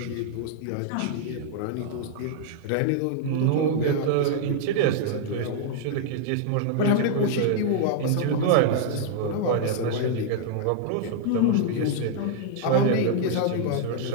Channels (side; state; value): both; different; correlation -0.01